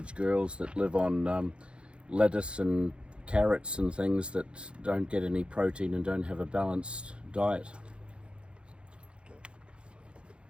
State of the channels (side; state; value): left; late; 0.057 ms